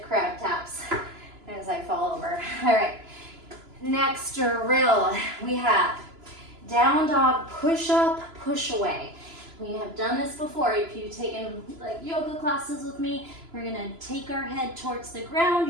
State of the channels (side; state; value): left; late; 3.0 ms